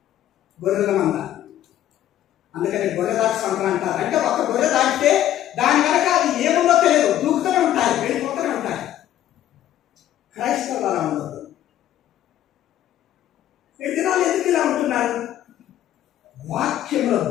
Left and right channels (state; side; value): quieter; right; 12.2 dB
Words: గొర్రెల మంద. అందుకని గొర్రెదాకా సంతానం అంటారు. అంటే ఒక గొర్రె దాటితే దాని వెనక అది ఏముందో తెలియదు, దూకుతూనే ఉంటాయి, వెళ్ళిపోతూనే ఉంటాయి. క్రైస్తవులు అలా ఉండదు. ఈ దినాలు ఎందుకు ఇలా ఉంటున్నారు? వాక్యంలో